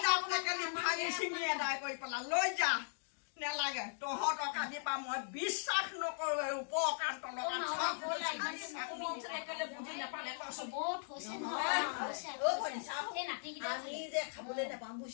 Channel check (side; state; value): right; silent; digital silence